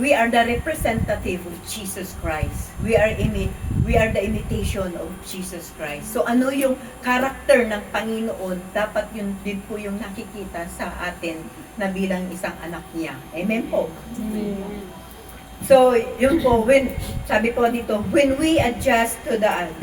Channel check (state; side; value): identical; both; correlation 1.00